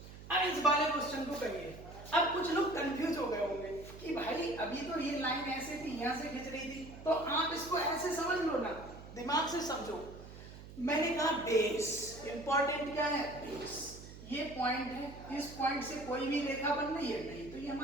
अब इस वाले क्वेश्चन को करिए। अब कुछ लोग कंफ्यूज हो गए होंगे कि भाई अभी तो ये लाइन ऐसे थी, यहाँ से खींच रही थी, तो आप इसको ऐसे समझ लो ना, दिमाग से समझो। मैंने कहा बेस, इंपॉर्टेंट क्या है बेस, ये पॉइंट है, इस पॉइंट से कोई भी रेखा बन रही है नहीं, तो ये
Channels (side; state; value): right; noise; hum, 15 dB below the sound